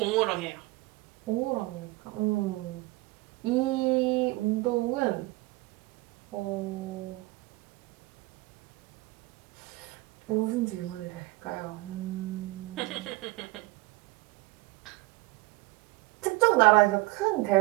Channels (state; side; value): quieter; left; 21.5 dB